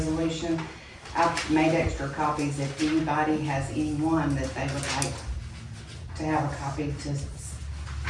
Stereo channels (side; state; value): both; identical; correlation 1.00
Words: I've made extra copies if anybody has anyone that they would like to have a copy to